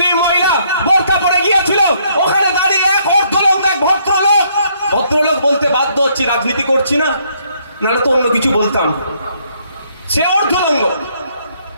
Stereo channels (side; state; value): both; inverted; correlation -0.69